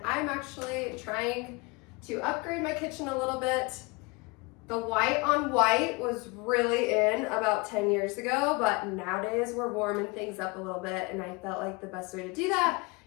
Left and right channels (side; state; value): right; quieter; 26.7 dB